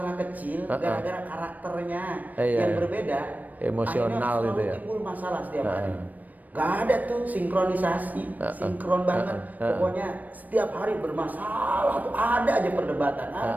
kecil gara-gara karakternya yang berbeda. Emosional akhirnya gitu ya. timbul masalah setiap hari. Gak ada tuh sinkronisasi, sinkron banget. Pokoknya setiap hari bermasalah tuh ada aja perdebatan,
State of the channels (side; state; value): left; late; 0.080 ms